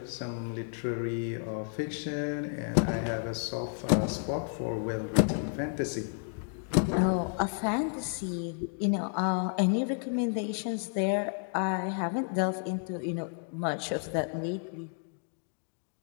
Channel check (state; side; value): silent; right; 57 dB below the other